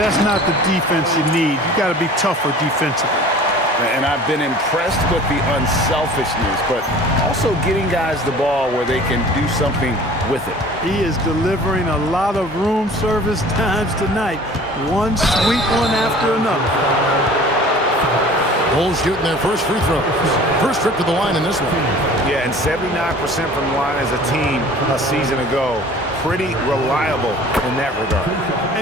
not the defense you need. You got to be tougher defensively. And I've been impressed with the unselfishness, but also getting guys the ball where they can do something with it. He is delivering a lot of room service times tonight. One sweet one after another. Bulls shooting their first free throws. First trip to the line in this one. Yeah, and 79% from the line as a team a season ago. Pretty reliable in that regard.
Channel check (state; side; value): normal; both; correlation 0.45